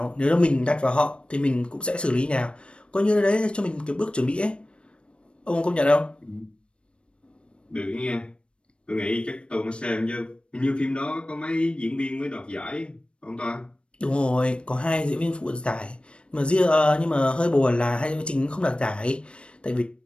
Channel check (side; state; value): right; late; 0.058 ms